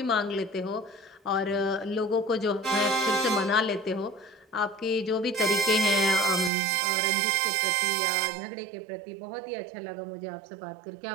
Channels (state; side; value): drops out; left; at 6.5 s